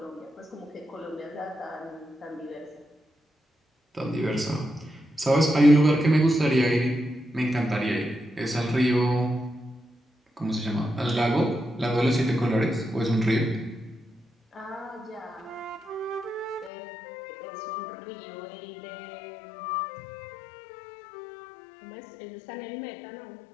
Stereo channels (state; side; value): drops out; right; at 16.7 s